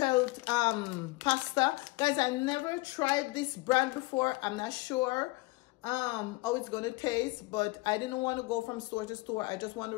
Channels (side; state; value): right; quieter; 22.5 dB